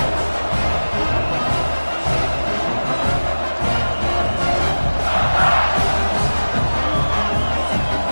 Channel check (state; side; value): inverted; both; correlation -1.00